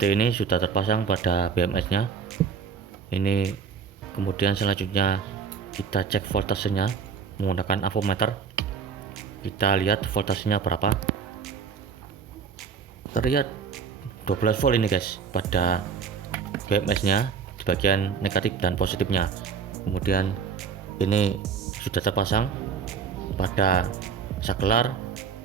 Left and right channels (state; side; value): quieter; left; 6.2 dB